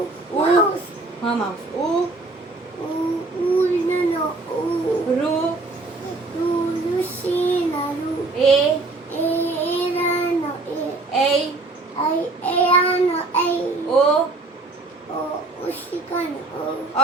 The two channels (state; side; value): quieter; left; 3.3 dB